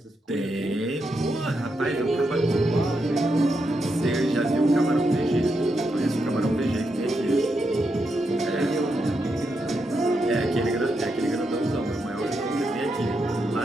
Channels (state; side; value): normal; both; correlation 0.83